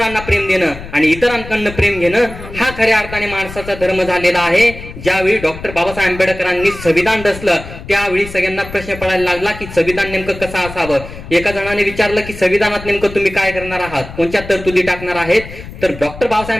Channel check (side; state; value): left; noise; rumble, 13 dB below the sound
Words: प्रेम देणं आणि इतरांकडनं प्रेम घेणं, हा खऱ्या अर्थाने माणसाचा धर्म झालेला आहे. ज्यावेळी डॉक्टर बाबासाहेब आंबेडकरांनी संविधान रचलं त्यावेळी सगळ्यांना प्रश्न पडायला लागला की संविधान नेमकं कसं असावं. एका जणाने विचारलं की संविधानात नेमकं तुम्ही काय करणार आहात, कोणत्या तरतुदी टाकणार आहेत, तर डॉक्टर